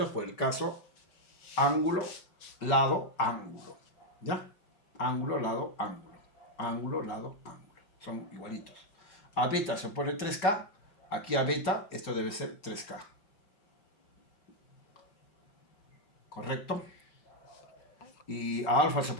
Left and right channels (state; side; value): late; right; 5.2 ms